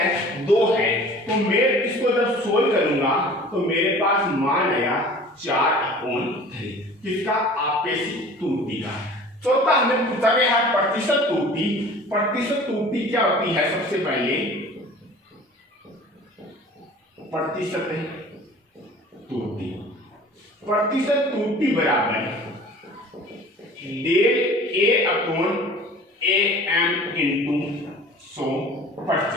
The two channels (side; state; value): both; normal; correlation 0.45